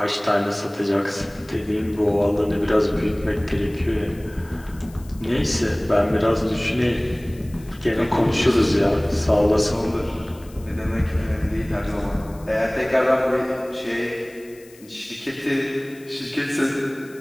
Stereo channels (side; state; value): left; noise; hiss, 25 dB below the sound